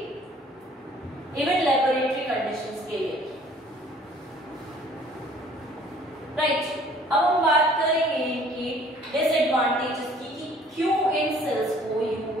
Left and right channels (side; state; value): both; normal; correlation 0.55